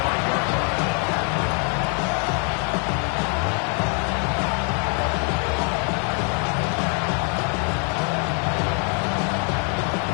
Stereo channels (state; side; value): quieter; right; 39.3 dB